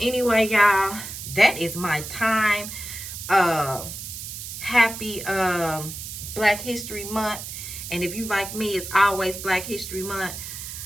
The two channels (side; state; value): right; noise; hiss, 9 dB below the sound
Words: y'all, that is my time. Happy Black History Month. And if you like me, it's always Black History Month.